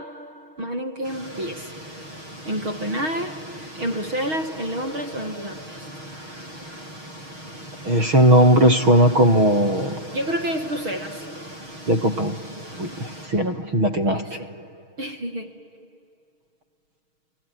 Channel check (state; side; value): late; left; 6.4 ms